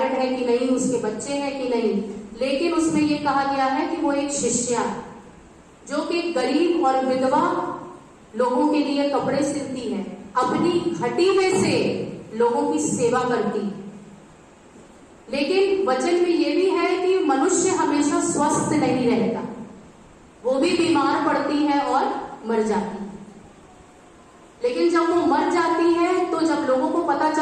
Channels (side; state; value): both; identical; correlation 1.00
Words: है कि नहीं, उसके बच्चे हैं कि नहीं, लेकिन उसमें ये कहा गया है कि वो एक शिष्या जो कि गरीब और विधवा लोगों के लिए कपड़े सिलती है, अपनी घटी में से लोगों की सेवा करती है। लेकिन वचन में ये भी है कि मनुष्य हमेशा स्वस्थ नहीं रहता, वो भी बीमार पड़ती है और मर जाती है। लेकिन जब वो मर जाती है तो जब लोगों को पता